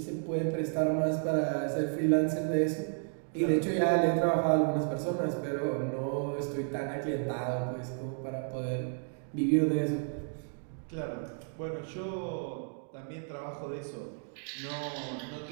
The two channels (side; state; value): left; silent; 56 dB below the other